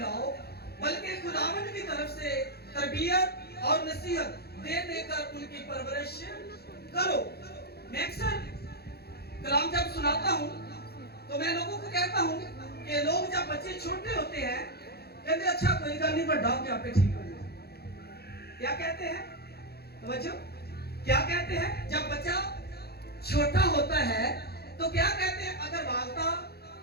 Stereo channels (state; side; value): late; right; 0.46 ms